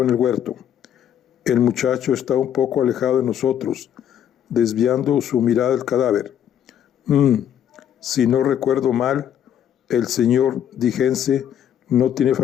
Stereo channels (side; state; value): right; quieter; 9.8 dB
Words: en el huerto. El muchacho estaba un poco alejado de nosotros, desviando su mirada del cadáver. Si no recuerdo mal, el señor Digense no tiene